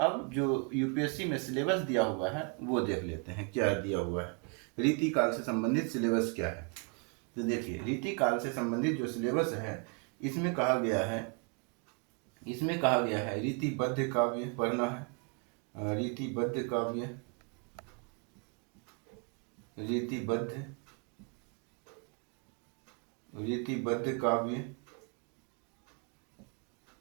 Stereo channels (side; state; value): left; quieter; 35.2 dB